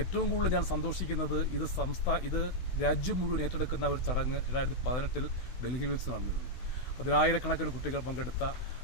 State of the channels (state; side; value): late; right; 16 ms